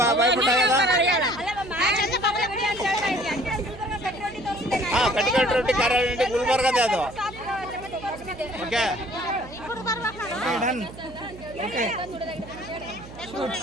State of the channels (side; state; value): right; noise; hum, 16 dB below the sound